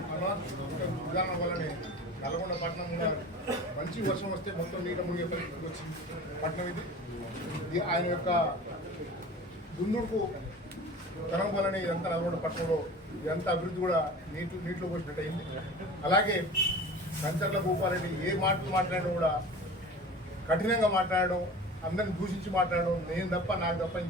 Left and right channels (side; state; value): both; normal; correlation 0.38